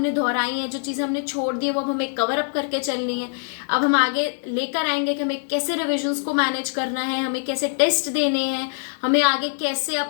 दोहराई हैं, जो चीजें हमने छोड़ दी है वो अब हमें कवर अप करके चलनी है। अब हम आगे लेकर आएंगे कि हमें कैसे रिविजन्स को मैनेज करना है, हमें कैसे टेस्ट देने हैं, हमें आगे कैसे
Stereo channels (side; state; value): right; silent; digital silence